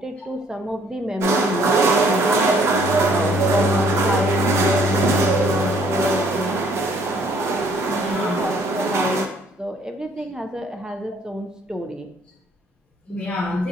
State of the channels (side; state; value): both; normal; correlation 0.62